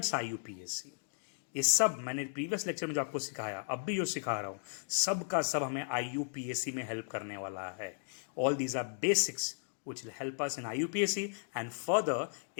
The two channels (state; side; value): silent; right; digital silence